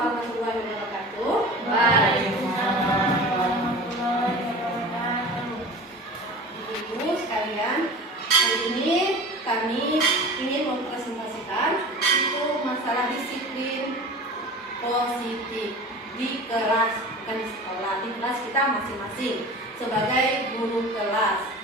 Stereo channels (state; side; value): normal; both; correlation 0.36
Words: wabarakatuh. Waalaikumsalam warahmatullahi wabarakatuh. Ibu sekalian, hari ini kami ingin mempresentasikan itu masalah disiplin positif di kelas, bukan di sekolah, di kelas kita masing-masing sebagai guru kelas.